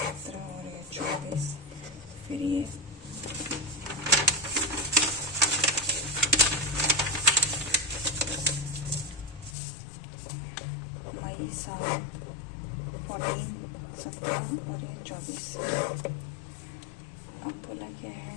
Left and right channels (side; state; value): right; drops out; at 9.6 s